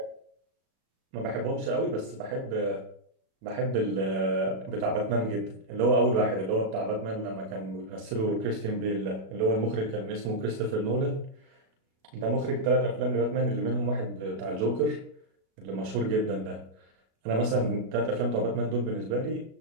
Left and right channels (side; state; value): left; late; 37 ms